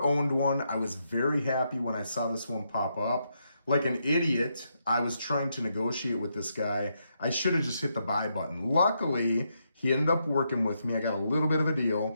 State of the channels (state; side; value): inverted; both; correlation -0.80